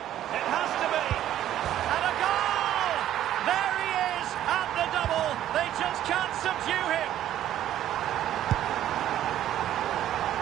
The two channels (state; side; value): quieter; left; 12.0 dB